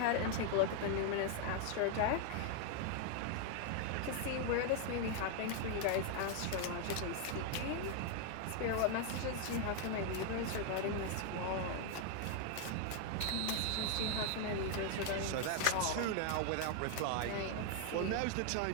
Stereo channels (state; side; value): different; both; correlation 0.00